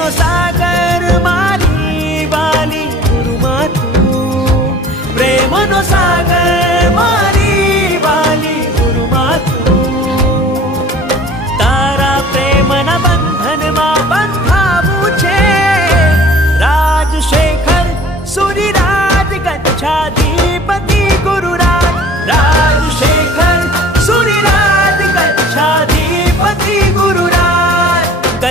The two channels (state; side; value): normal; both; correlation 0.47